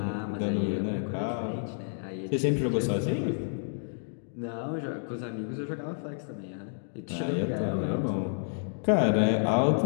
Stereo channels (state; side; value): silent; right; digital silence